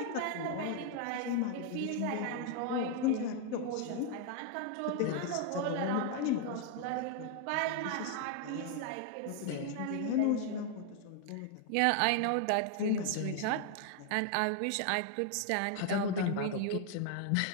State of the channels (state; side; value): different; both; correlation 0.00